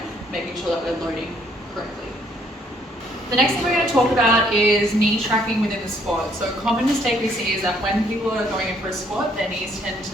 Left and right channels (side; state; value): both; normal; correlation 0.67